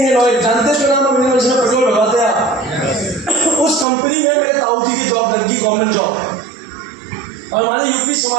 ऑयल, जानते हैं नाम है, जिसमें पेट्रोल भरवाते हैं। उस कंपनी में मेरे ताऊजी की जॉब लगी, गवर्नमेंट जॉब। और हमारे यूपी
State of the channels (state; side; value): drops out; left; at 3.9 s